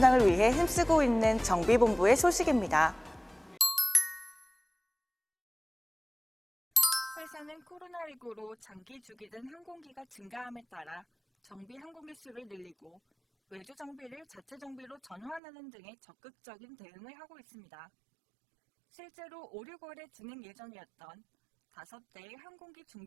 위해 힘쓰고 있는 정비본부의 소식입니다. 회사는 코로나19로 장기 주기된 항공기가 증가함에 따라 정비 항공기 수를 늘리고 외주 정비를 자체 정비로 전환하는 등의 적극적인 대응을 하고 있습니다. 실제로 5, 6월에 진행 예정이었던 5대의 항공기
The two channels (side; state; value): left; drops out; at 15.4 s